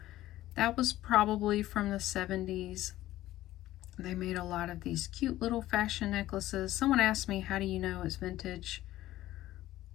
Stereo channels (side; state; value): right; quieter; 15.0 dB